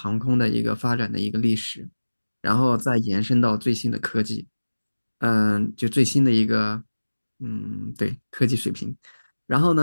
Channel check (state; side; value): inverted; both; correlation -1.00